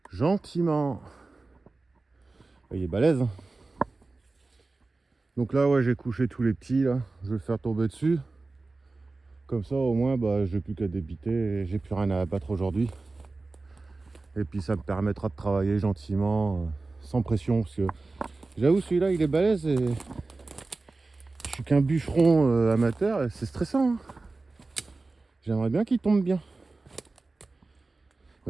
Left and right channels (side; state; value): left; quieter; 3.5 dB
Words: Gentiment. Il est balèze. Hein. Donc là, ouais, j'ai couché tous les petits. Là. Je vais le faire tomber dessus. Comme ça, au moins, bah, j'ai plus qu'à débiter. Et j'ai plus rien à abattre aujourd'hui. Et puis, ça me permettra de travailler gentiment, sans pression. Parce que j'avoue, celui-là, il est balèze. Et je suis qu'un bûcheron amateur. Et c'est stressant. Hein. J'aimerais bien qu'il tombe bien.